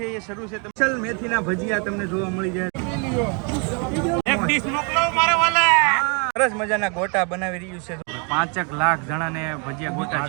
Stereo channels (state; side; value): quieter; left; 35.6 dB